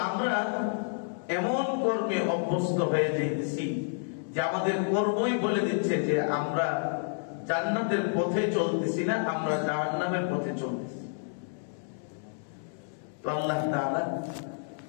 আমরা এমন কর্মে অভ্যস্ত হয়ে যেতেছি যে আমাদের কর্মই বলে দিচ্ছে যে আমরা জান্নাতের পথে চলতেছি না, আমরা জাহান্নামের পথে চলতেছি। তো আল্লাহ তাআলা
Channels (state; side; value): silent; right; digital silence